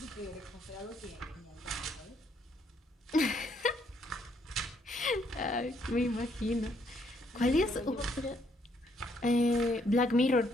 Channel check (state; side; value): normal; both; correlation 0.70